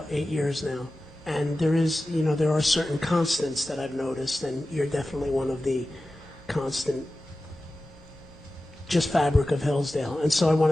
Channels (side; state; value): both; normal; correlation 0.95